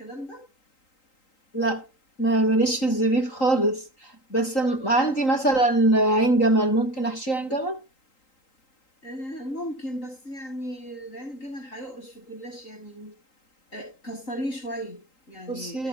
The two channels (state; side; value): late; right; 3.8 ms